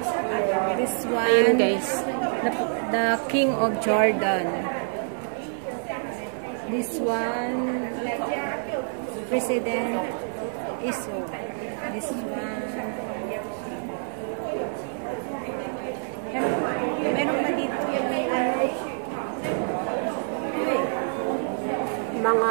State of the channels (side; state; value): left; silent; 58 dB below the other